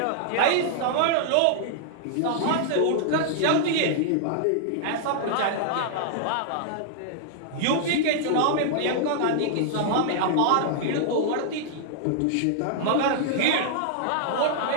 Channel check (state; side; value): different; both; correlation -0.01